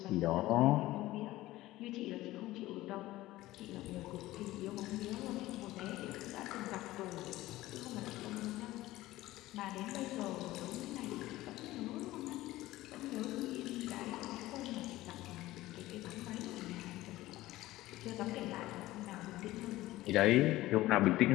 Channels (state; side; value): quieter; right; 16.9 dB